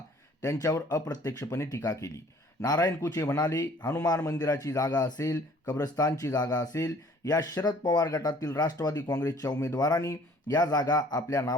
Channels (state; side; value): normal; both; correlation 0.54